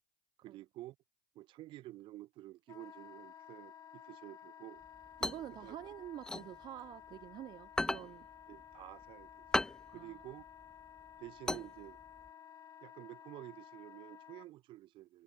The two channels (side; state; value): both; normal; correlation 0.73